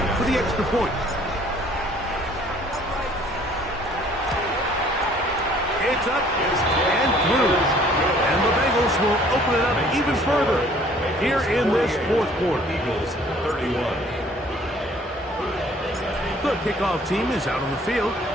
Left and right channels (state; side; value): normal; both; correlation 0.56